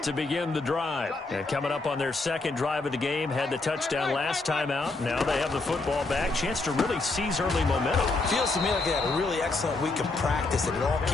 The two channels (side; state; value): right; quieter; 3.4 dB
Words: to begin the drive. And coming up on their second drive of the game, had the touchdown last time out. Now they have the football back. Chance to really seize early momentum. Feels to me like they had a really excellent week of practice and it all